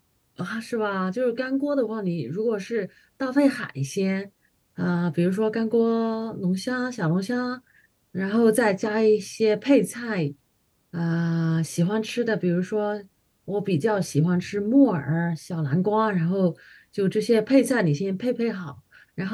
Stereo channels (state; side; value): identical; both; correlation 1.00